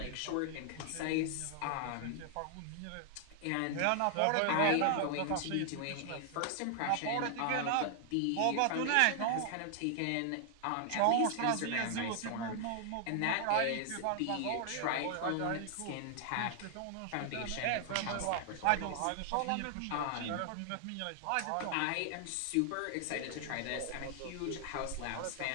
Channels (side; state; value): both; different; correlation 0.00